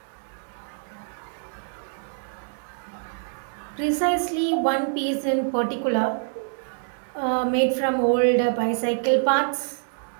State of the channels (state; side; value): silent; left; digital silence